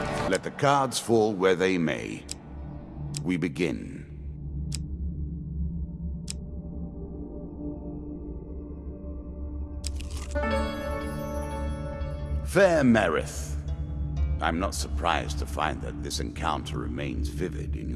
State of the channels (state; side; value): identical; both; correlation 1.00